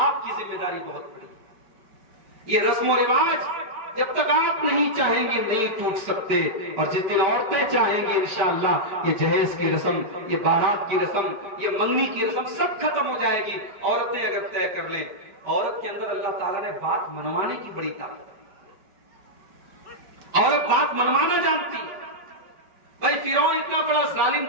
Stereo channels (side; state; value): left; late; 5.1 ms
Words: آپ کی ذمہ داری بہت بڑی ہے۔ یہ رسم و رواج جب تک آپ نہیں چاہیں گے نہیں ٹوٹ سکتے، اور جس دن عورتیں چاہیں گے انشاءاللہ یہ جہیز کی رسم، یہ بارات کی رسم، یہ منگنی کی رسم سب ختم ہو جائے گی۔ عورتیں اگر طے کر لیں، عورت کے اندر اللہ تعالیٰ نے بات منوانے کی بڑی طاقت ہے، عورت بات منوانا جانتی ہے۔ بھائی فرعون اتنا بڑا